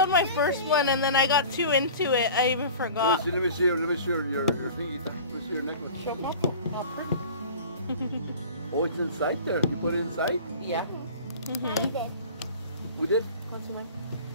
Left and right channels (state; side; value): inverted; both; correlation -0.40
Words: my first one and then I got too into it. I even forgot. Let me see your thingy. Let me see your necklace. Oh, it's inside there. You put it inside? Yeah. We did? What's mine?